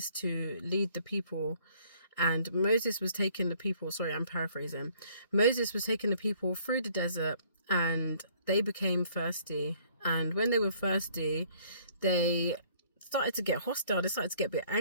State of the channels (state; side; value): inverted; both; correlation -0.60